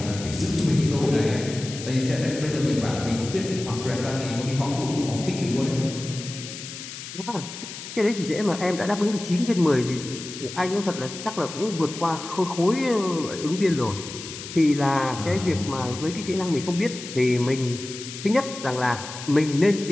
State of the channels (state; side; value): noise; left; hiss, 11 dB below the sound